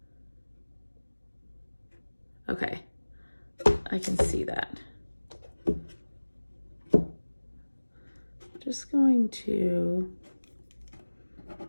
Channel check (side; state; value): both; inverted; correlation -1.00